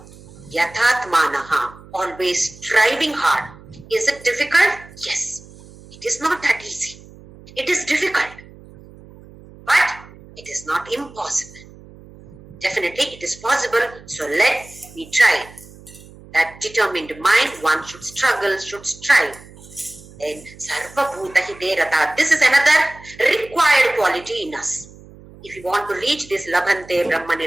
Yathatmanaha, always striving hard. Is it difficult? Yes. It is not that easy. It is difficult. But it is not impossible. Definitely it is possible. So let me try. That determined mind, one should struggle, should strive. Then Sarva Bhuta hite rataha. This is another required quality in us. If you want to reach this Labhante Brahma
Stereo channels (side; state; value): right; noise; hum, 21 dB below the sound